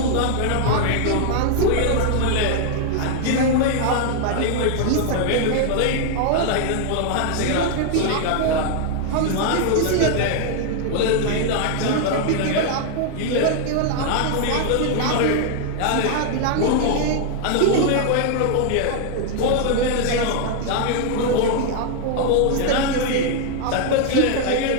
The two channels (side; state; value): both; different; correlation 0.00